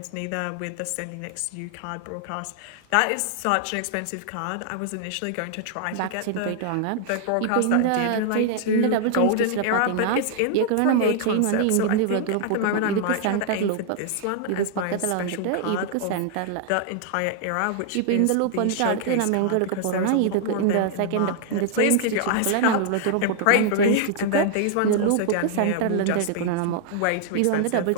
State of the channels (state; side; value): different; both; correlation 0.00